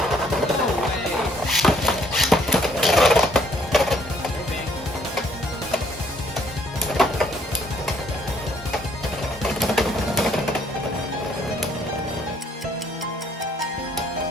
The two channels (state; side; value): normal; both; correlation 0.64